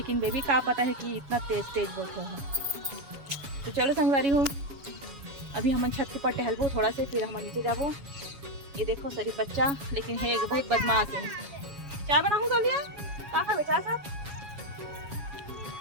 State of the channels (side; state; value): left; late; 7.2 ms